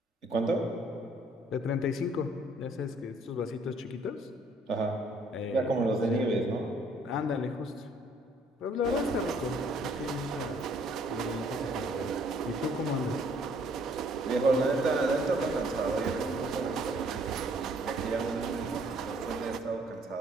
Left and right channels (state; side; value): normal; both; correlation 0.62